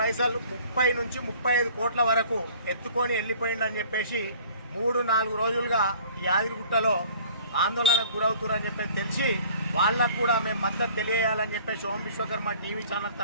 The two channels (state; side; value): inverted; both; correlation -0.51